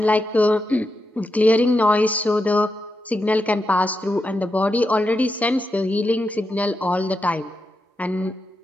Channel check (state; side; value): normal; both; correlation 0.86